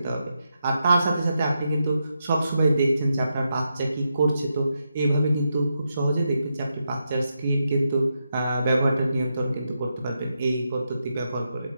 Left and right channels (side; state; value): both; inverted; correlation -0.84